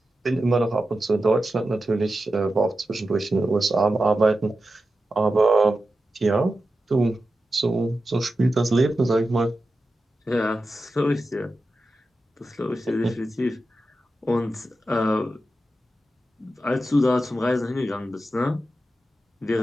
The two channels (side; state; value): both; normal; correlation 0.91